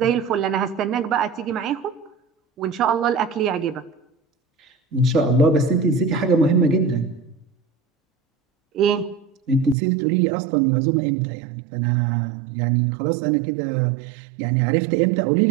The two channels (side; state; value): left; drops out; at 9.8 s